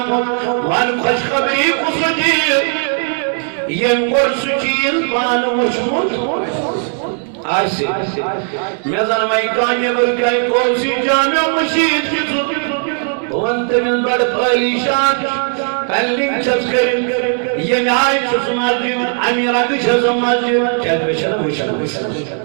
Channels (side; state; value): left; silent; 55 dB below the other